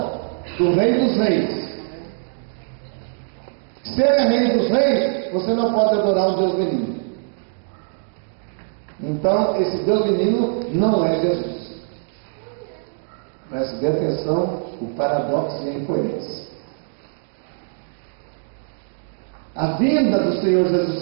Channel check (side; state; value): left; silent; digital silence